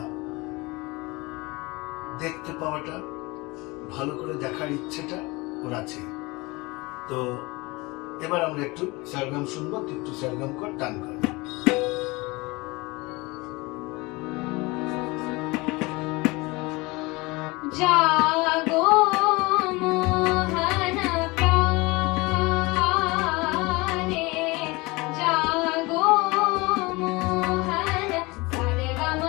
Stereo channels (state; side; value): quieter; right; 23.9 dB